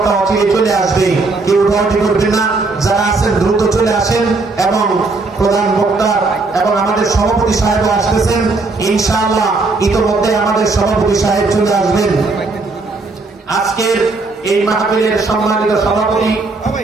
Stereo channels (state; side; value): quieter; left; 3.6 dB